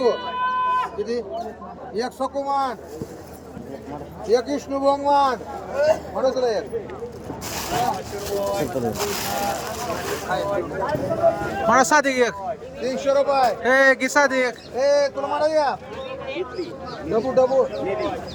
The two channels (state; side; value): identical; both; correlation 1.00